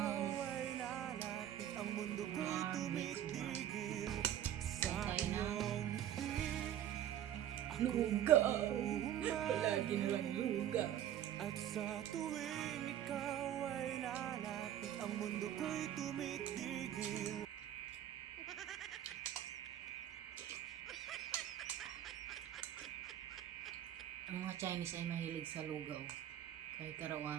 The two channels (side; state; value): left; quieter; 11.1 dB